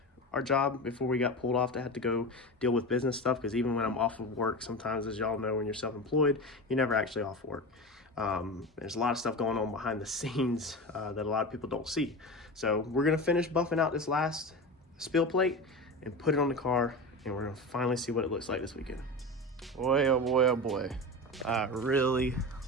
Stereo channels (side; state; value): both; normal; correlation 0.26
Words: our job before we got pulled off to have to go deal with business stuff, because even when I'm off of work, sometimes, as y'all know, when you're self-employed, you're never actually off work. There's a lot of stuff going on behind the scenes that a lot of people don't see. So we're gonna finish buffing out this last spill plate and put it on the car and we're gonna finally see what it looks like this weekend. Boy, oh boy, oh boy. I really